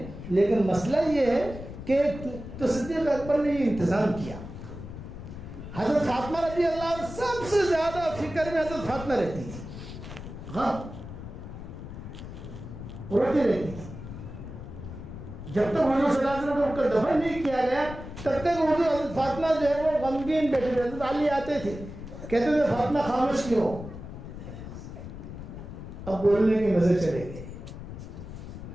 لیکن مسئلہ یہ ہے کہ تو صدیق اکبر نے یہ انتظام کیا. حضرت فاطمہ رضی اللہ عنہ سب سے زیادہ فکر میں حضرت فاطمہ رہتی تھی، ہاں روتی رہتی تھی. جب تک حضور صلی اللہ علیہ وسلم کو دفن نہیں کیا گیا تب تک حضور حضرت فاطمہ جو ہے وہ غمگین بیٹھے تھے. حضرت علی آتے تھے کہتے تھے فاطمہ خاموش کیوں ہو؟ اب بولنے کے مزے چلے گئے،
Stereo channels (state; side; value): noise; left; rumble, 11 dB below the sound